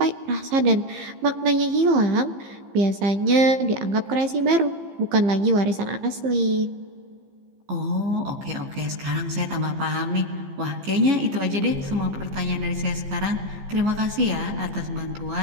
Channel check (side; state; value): left; late; 15 ms